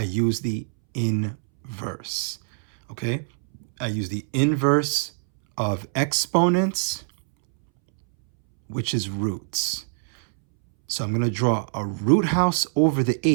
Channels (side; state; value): left; silent; 63 dB below the other